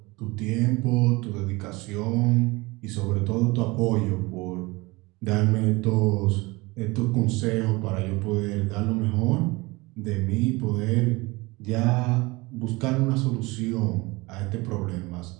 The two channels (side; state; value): left; quieter; 23.3 dB